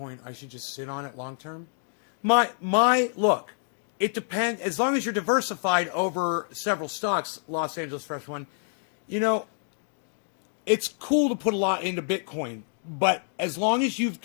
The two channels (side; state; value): right; silent; 60 dB below the other